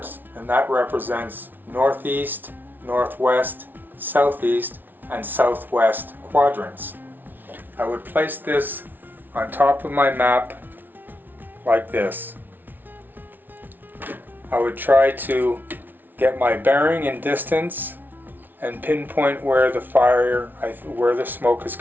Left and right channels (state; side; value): late; left; 0.089 ms